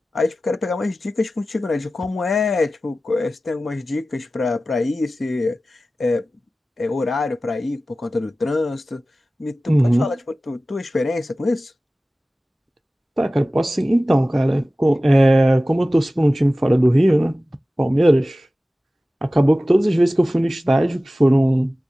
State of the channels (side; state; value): both; normal; correlation 0.96